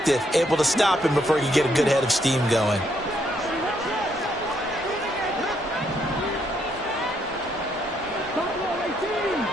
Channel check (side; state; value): both; normal; correlation 0.73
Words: able to stop him before he could get a good head of steam going.